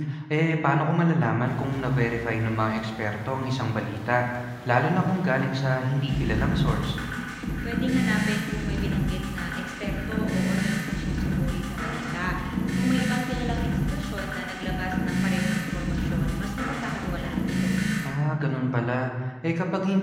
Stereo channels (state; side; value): identical; both; correlation 1.00